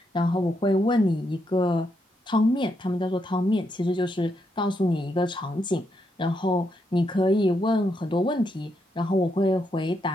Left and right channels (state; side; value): normal; both; correlation 0.80